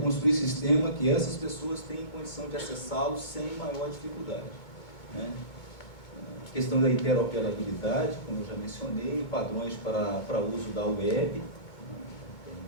um sistema que essas pessoas tenham condição de acessá-lo sem maior dificuldade, né? A questão da interoperabilidade, como eu já mencionei, padrões para uso da web,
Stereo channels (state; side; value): late; right; 2.2 ms